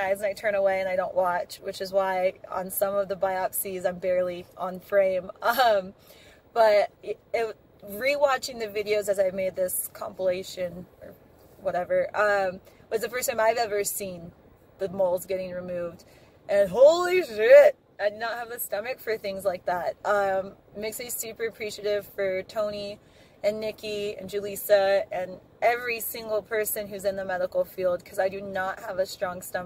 and I turn away and I don't watch, which is why on some of the biopsies I'm barely on frame. But rewatching the videos as I made this compilation or whatever was the first time I've ever seen the moles getting removed. And holy shit, I do not have the stomach for things like that. Makes me super appreciative for Toni and Nikki and Julissa and every single person who's in the medical field, because I do not have a strong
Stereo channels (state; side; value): identical; both; correlation 1.00